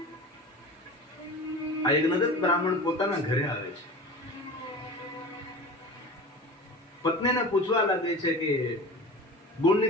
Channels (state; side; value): normal; both; correlation 0.34